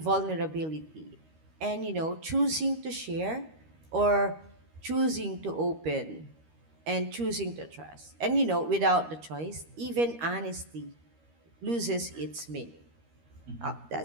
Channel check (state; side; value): late; left; 13 ms